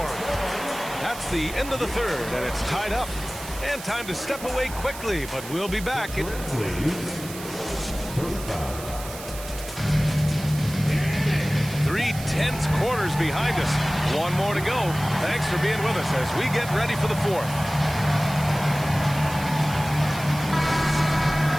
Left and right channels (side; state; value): right; noise; hiss, 13 dB below the sound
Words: him. That's the end of the third, and it's tied up. And time to step away quickly, but we'll be back. 3 tense quarters behind us. One more to go. Thanks for being with us as we get ready for the fourth.